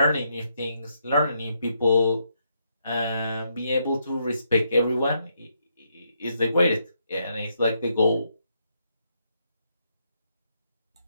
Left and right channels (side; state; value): both; inverted; correlation -0.77